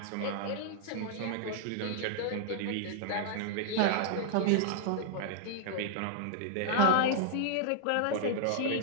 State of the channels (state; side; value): different; both; correlation -0.01